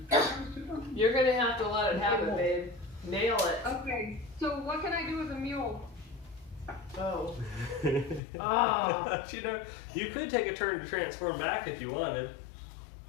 You're gonna have to let it happen, babe. Nail it. Okay, so what can I do with a mule? Oh. Oh. You know, you could take a turn to transform back if you wanted.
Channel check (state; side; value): drops out; right; at 8.2 s